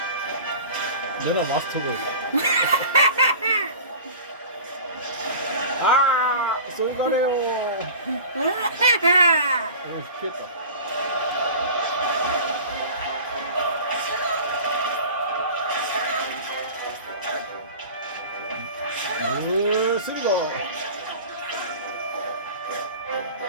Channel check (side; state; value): both; inverted; correlation -0.38